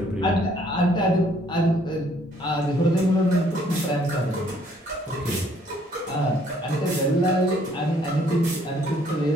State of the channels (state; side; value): normal; both; correlation 0.63